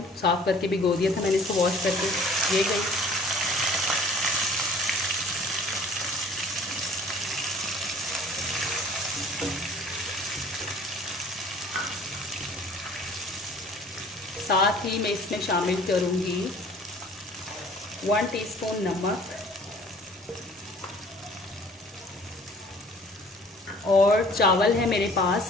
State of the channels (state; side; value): normal; both; correlation 0.51